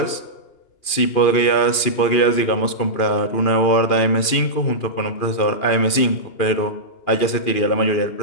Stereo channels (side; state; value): right; late; 2.5 ms